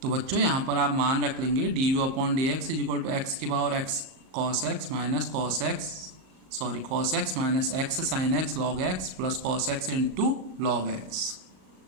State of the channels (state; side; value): late; left; 38 ms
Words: तो बच्चों यहाँ पर आप मान रख लेंगे d you upon D x is equal to x की power x cos x minus cos x minus x sine x log x plus cos x into log x.